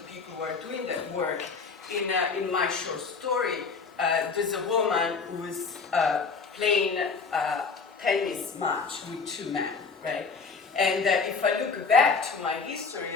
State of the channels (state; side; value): quieter; right; 4.9 dB